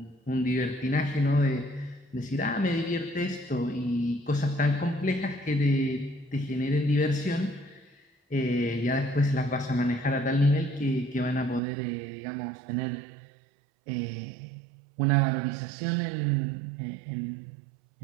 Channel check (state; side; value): drops out; left; at 11.6 s